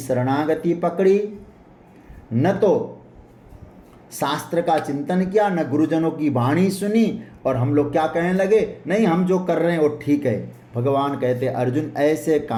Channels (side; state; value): both; identical; correlation 1.00